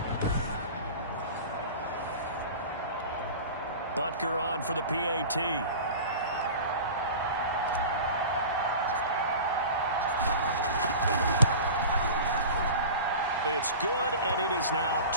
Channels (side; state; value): both; inverted; correlation -0.35